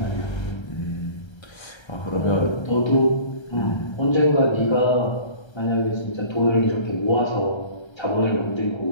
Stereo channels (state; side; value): late; right; 1.3 ms